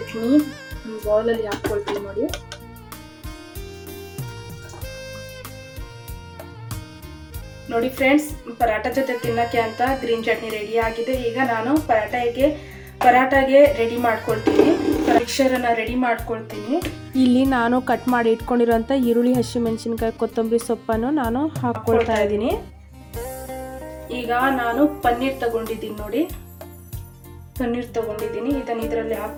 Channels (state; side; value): identical; both; correlation 1.00